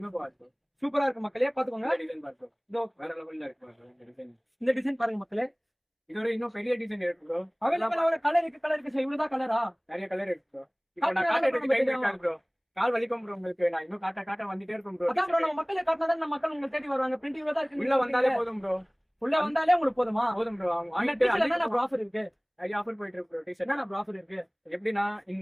போகாது ப்ரோ. சூப்பரா இருக்கு மக்களே, பாத்துக்கோங்க. இந்த டிசைன் பாரு ப்ரோ. இதோ வேற லெவல்ல இருக்கு ப்ரோ இந்த டிசைன். இந்த டிசைன் பாருங்க மக்களே. இதோட இன்னும் பெரிய டிசைன் இருக்கு ப்ரோ. அவைலபிள் கலர் இருக்கு சார். இவ்வளவுதான் கலரா? நிறைய கலர் இருக்கு ப்ரோ. இப்போ நான் காட்டுறதுக்கு டைம் இருக்காது ப்ரோ. கால் வலிக்கும் ப்ரோ உங்களுக்கு. நான் இன்னும் காட்ட வந்துட்டே இருக்கும் ப்ரோ. அதான் ப்ரோ, நம்ம மக்களே காட்டினா நம்ம மக்கள் உங்களை தேடி வருவாங்க. பிரிண்ட் இவ்வளவுதான் இருக்கு. உள்ள வந்தாலே போதும் ப்ரோ. உள்ள வந்தாலே உங்களுக்கு போதுமா? போதும் ப்ரோ. அவங்க அந்த வாங்கிட்டு டிஷர்ட் என்ன ப்ரோ ஆஃபர் இருக்கு? நிறைய ஆஃபர் போயிட்டு இருக்கு ப்ரோ. டிஷர்ட் என்ன ப்ரோ ஆஃபர் இருக்கு? எப்படின்னா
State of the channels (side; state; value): both; identical; correlation 1.00